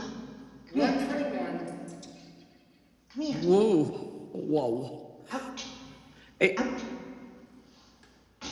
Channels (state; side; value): identical; both; correlation 1.00